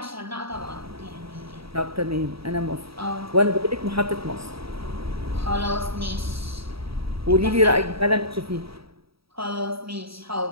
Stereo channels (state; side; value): late; left; 0.76 ms